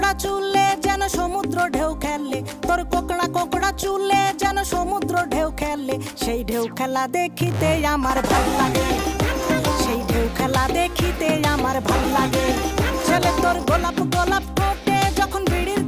কোকড়া চুলে যেন সমুদ্র ঢেউ খেলে, তোর কোকড়া কোকড়া চুলে যেন সমুদ্র ঢেউ খেলে। সেই ঢেউ খেলা দেখিতে আমার ভাল লাগে, সেই ঢেউ খেলা দেখিতে আমার ভাল লাগে। ছেলে তোর গোলাপ গোলাপ ঠোঁটে যখন বিড়ির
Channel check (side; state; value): both; identical; correlation 1.00